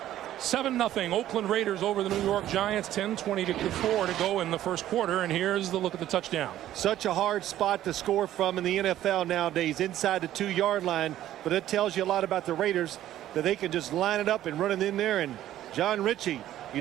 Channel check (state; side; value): quieter; left; 12.9 dB